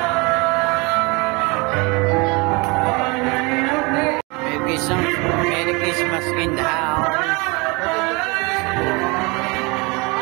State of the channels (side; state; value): left; quieter; 27.6 dB